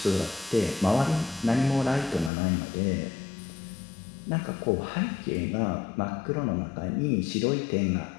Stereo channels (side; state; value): right; drops out; at 2.3 s